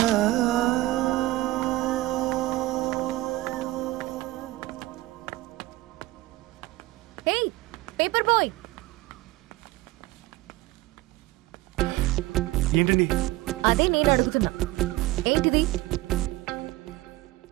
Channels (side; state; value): left; quieter; 18.7 dB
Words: ఏంటండి? అదే నేను అడుగుతున్నా, ఏంటిది?